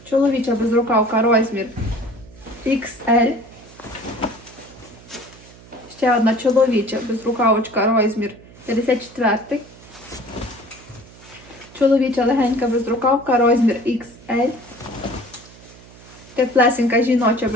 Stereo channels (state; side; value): noise; right; hum, 22 dB below the sound